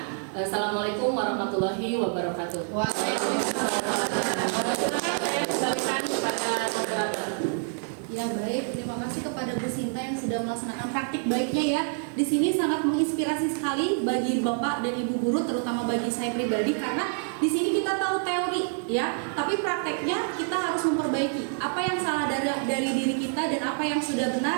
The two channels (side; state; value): left; silent; 56 dB below the other